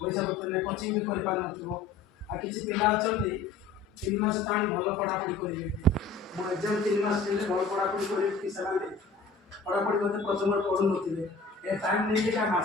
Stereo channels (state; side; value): quieter; right; 4.3 dB